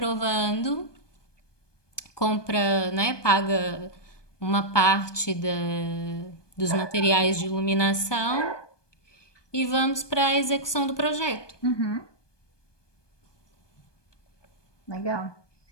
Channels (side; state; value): right; late; 1.2 ms